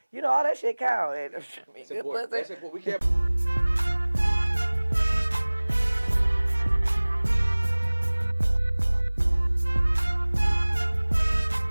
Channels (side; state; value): both; inverted; correlation -1.00